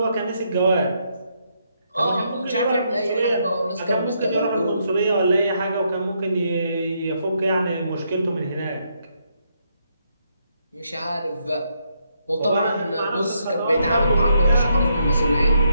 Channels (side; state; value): both; inverted; correlation -0.77